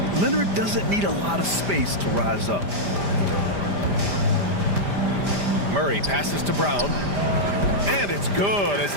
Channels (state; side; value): late; left; 5.0 ms